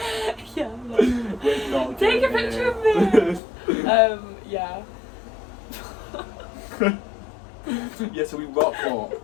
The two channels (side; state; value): right; drops out; at 3.4 s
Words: Yeah, like, We're not take a getting picture in. of me. Yeah. Yeah, so we rock up,